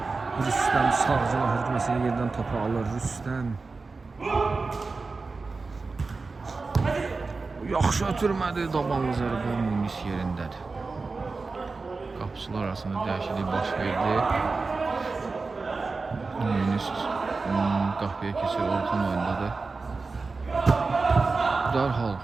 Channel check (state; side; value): quieter; left; 4.0 dB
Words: Rüstəm sağcıla hücuməsini yerdən topu alır. Rüstəm. Yaxşı ötürmədi. Dabanlı zərbə Munis yerindədir. Qapıçılar arasında dəyişiklik baş verdi. Munis qapıya keçir. Orxan oyundadır. Dərhal